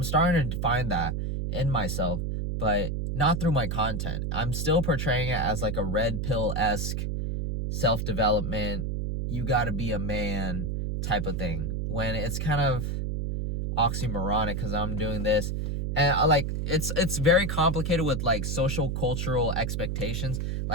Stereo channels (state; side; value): noise; right; hum, 1 dB below the sound